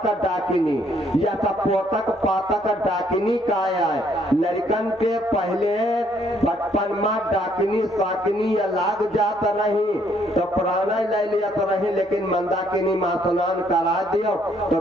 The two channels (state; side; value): normal; both; correlation 0.67